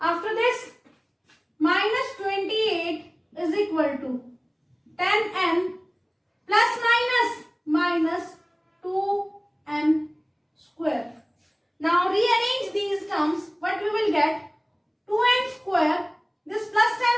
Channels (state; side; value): identical; both; correlation 1.00